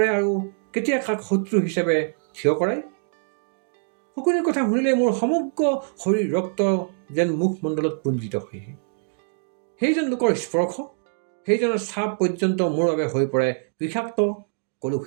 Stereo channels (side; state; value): left; silent; digital silence